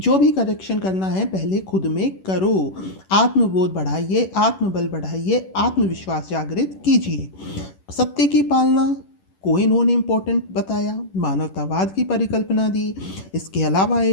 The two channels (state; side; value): late; right; 11 ms